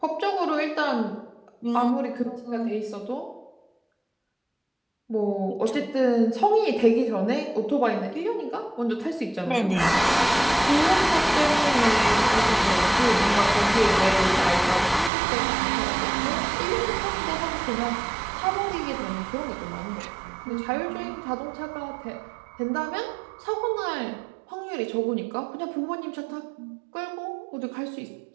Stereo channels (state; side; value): drops out; left; at 15.1 s